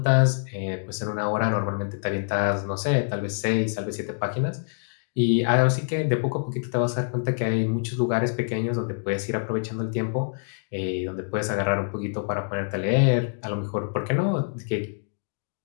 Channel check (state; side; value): silent; right; digital silence